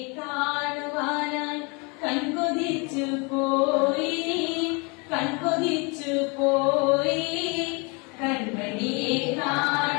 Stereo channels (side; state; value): right; quieter; 30.7 dB